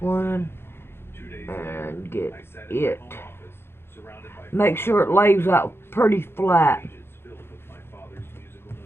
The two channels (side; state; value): right; late; 0.11 ms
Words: one and get it. Make sure it lays out pretty flat.